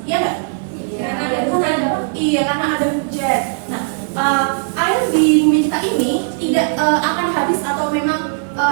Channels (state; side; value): silent; left; 68 dB below the other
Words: Iya nggak? Karena ada hujan. Nah, air di bumi kita ini tidak akan habis atau memang